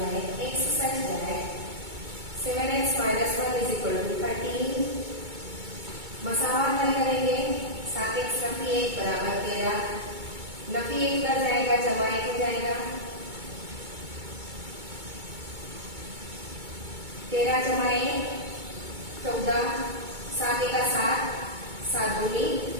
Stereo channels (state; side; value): late; left; 2.2 ms